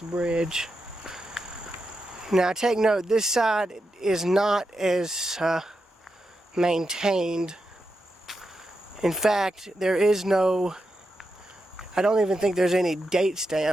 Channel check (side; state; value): both; normal; correlation 0.87